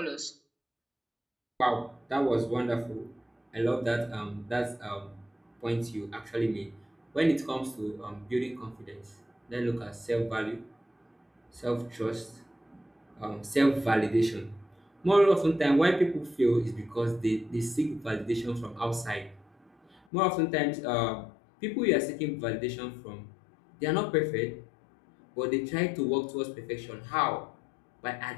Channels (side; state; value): right; drops out; at 20.0 s